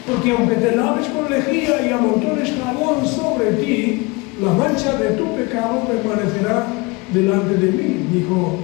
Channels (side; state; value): right; quieter; 26.0 dB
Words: Porque aunque te laves con lejía y amontones jabón sobre ti, la mancha de tu pecado permanecerá delante de mí, dijo